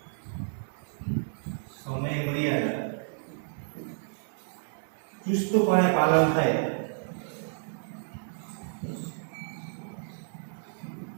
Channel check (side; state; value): left; silent; digital silence